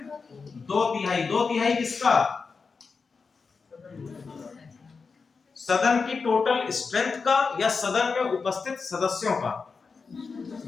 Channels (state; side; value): quieter; right; 4.9 dB